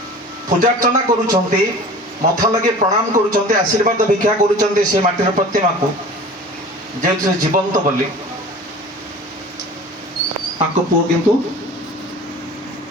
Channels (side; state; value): both; normal; correlation 0.41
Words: ପୂଜାର୍ଚ୍ଚନା କରୁଛନ୍ତି, ମଥା ଲଗେଇ ପ୍ରଣାମ କରୁଛନ୍ତି, ଆଶୀର୍ବାଦ ଭିକ୍ଷା କରୁଛନ୍ତି ସେ ମାଟିର ପ୍ରତିମାକୁ, ଯେହେତୁ ସେ ଜୀବନ୍ତ ବୋଲି। ତାଙ୍କ ପୁଅ କିନ୍ତୁ